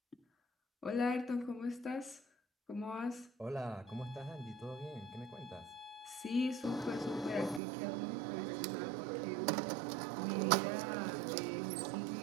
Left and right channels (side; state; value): left; drops out; at 7.6 s